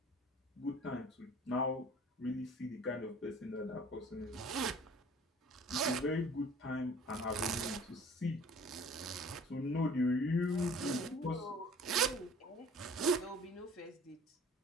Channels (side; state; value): both; normal; correlation 0.49